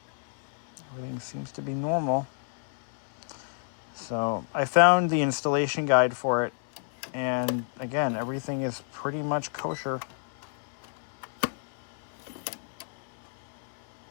Everything seems to be normal. So I found the installation guide for it. And again, everything is pretty much kosher.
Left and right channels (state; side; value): silent; right; 58 dB below the other